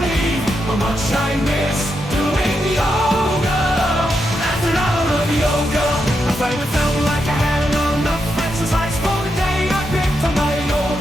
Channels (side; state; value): both; normal; correlation 0.84